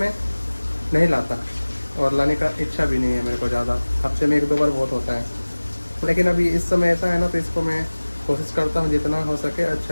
नहीं लाता और लाने का इच्छा भी नहीं है मेरे को ज़्यादा, हफ्ते में 1-2 बार बहुत होता है। लेकिन अभी इस समय ऐसा है ना, तो इसको मैं कोशिश करता हूँ जितना हो सके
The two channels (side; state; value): both; inverted; correlation -1.00